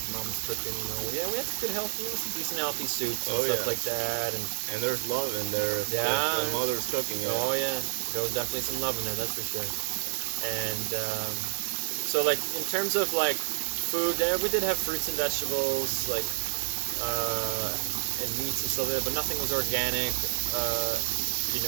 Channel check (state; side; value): silent; left; 56 dB below the other